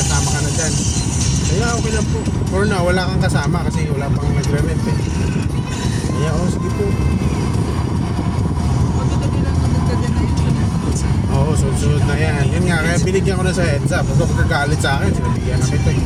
ka na dyan? Kaya okay lang po. For now, wala kang kasama kasi wala pang nagre-rent eh. Kaya sige po. Magkagabi lang magkagabi na yun. Oo, sunod na yan. Yun nga, kaya binigyan ko na sa heads up. Huwag magkagalit sa akin, sinabihan na kita eh.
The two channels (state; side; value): identical; both; correlation 1.00